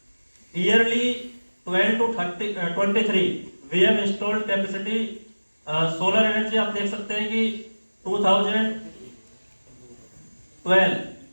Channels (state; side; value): inverted; both; correlation -1.00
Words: yearly 12 to 23 we have installed capacity solar energy. आप देख सकते हैं कि 2012